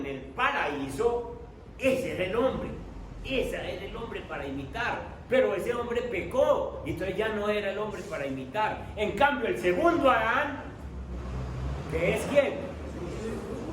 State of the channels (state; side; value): identical; both; correlation 1.00